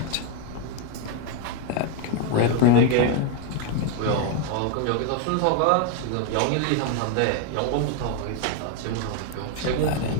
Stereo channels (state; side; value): different; both; correlation 0.01